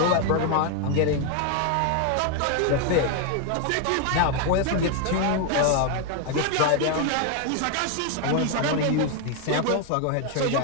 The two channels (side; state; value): both; different; correlation 0.01